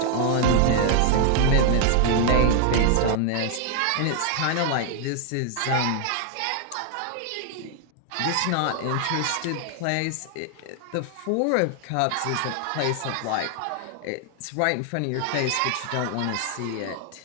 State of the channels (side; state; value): both; different; correlation 0.00